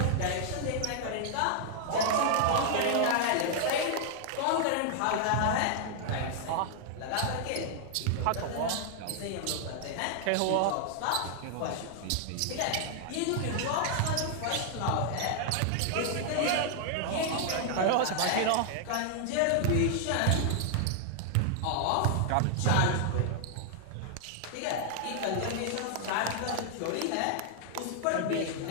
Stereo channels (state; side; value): different; both; correlation 0.00